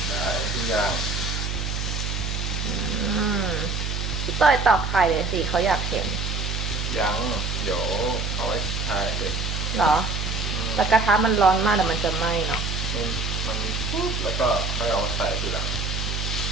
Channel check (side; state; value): right; noise; hum, 2 dB below the sound